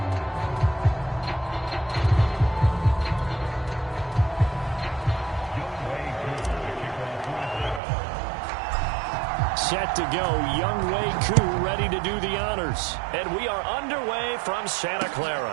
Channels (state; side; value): drops out; left; at 7.8 s